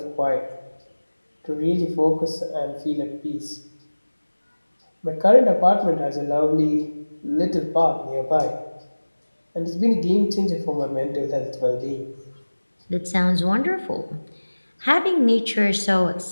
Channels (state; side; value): inverted; both; correlation -1.00